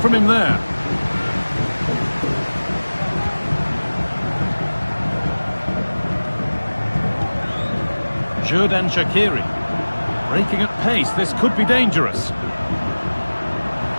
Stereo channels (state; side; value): inverted; both; correlation -1.00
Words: from him there. Xherdan Shaqiri. Breaking at pace, this could be dangerous.